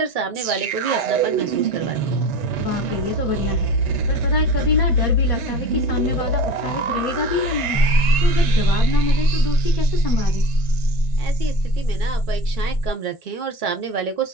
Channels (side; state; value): right; late; 1.5 ms